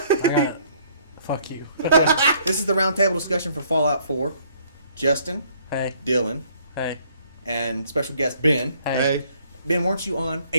Fuck you. This is the roundtable discussion for Fallout 4. Justin. Hey. Dylan. Hey. And special guest Ben. Hey. Ben, weren't you on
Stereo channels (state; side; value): inverted; both; correlation -0.62